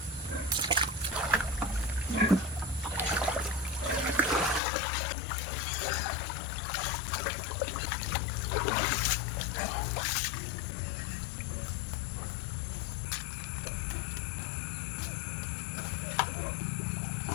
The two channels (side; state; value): right; drops out; at 4.6 s